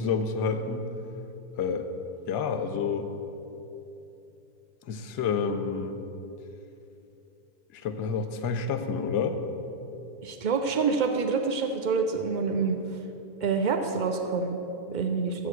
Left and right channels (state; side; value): late; right; 2.1 ms